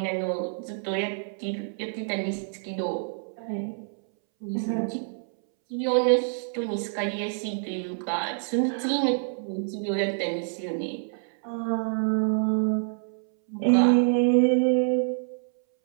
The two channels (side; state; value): left; silent; 60 dB below the other